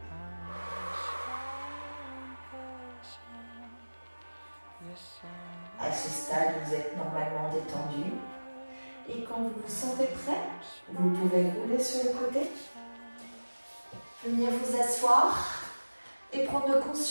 À ce stade, vous êtes normalement détendu. Et quand vous vous sentez prêt, vous pouvez rouler sur le côté. Venir vous asseoir et prendre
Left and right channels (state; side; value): inverted; both; correlation -1.00